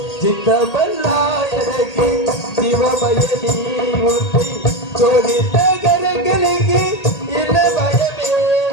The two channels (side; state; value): right; late; 1.8 ms